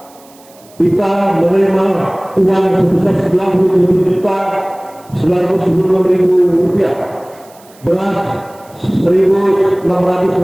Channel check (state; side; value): noise; right; hiss, 27 dB below the sound